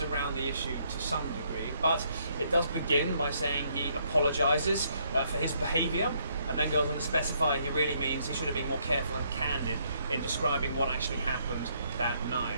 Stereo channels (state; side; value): inverted; both; correlation -0.70